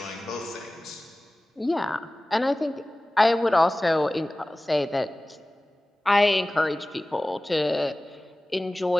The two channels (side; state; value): both; normal; correlation 0.98